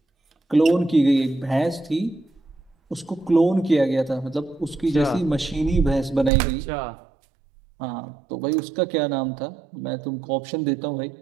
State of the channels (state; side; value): drops out; left; at 6.3 s